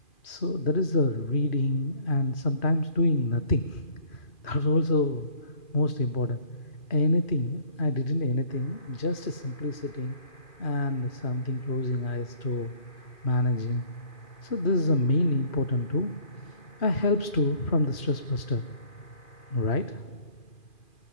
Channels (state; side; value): late; right; 2.4 ms